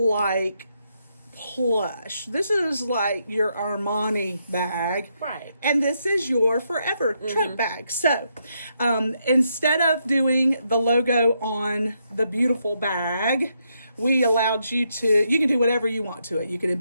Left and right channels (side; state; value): both; inverted; correlation -0.79